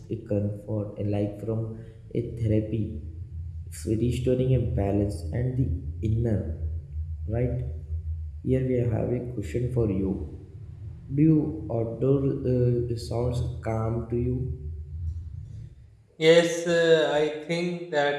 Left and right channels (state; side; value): identical; both; correlation 1.00